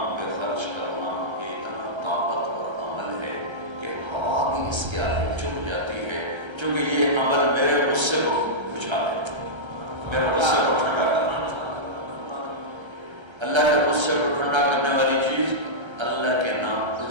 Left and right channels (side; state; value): left; late; 1.3 ms